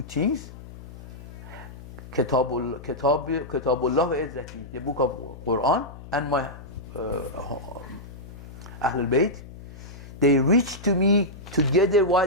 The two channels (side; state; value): left; noise; hum, 15 dB below the sound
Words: things. Kitabullah wa Izzati, the book of Quran, and my Ahlul Bayt. They reach to me together while